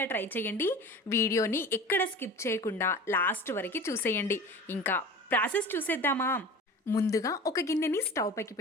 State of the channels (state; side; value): normal; both; correlation 0.37